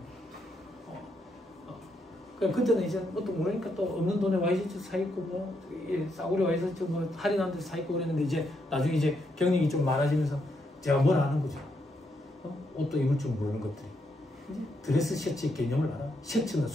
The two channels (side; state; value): both; normal; correlation 0.78